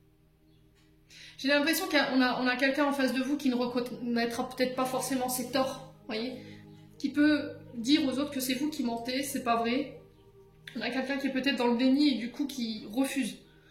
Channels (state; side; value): identical; both; correlation 1.00